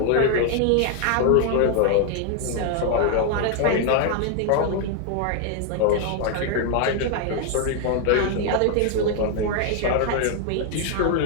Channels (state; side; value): different; both; correlation 0.00